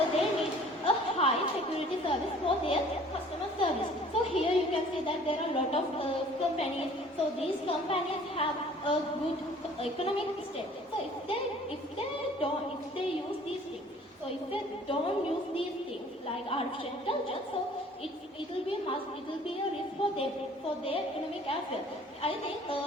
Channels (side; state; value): both; normal; correlation 0.52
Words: they need a high security service for their customer service. So here you can see that there are a lot of companies. So these companies have a good economic state. So if they use these things, so if they don't use these things like artificial intelligence, so it will be a risk for their economic as well. I think,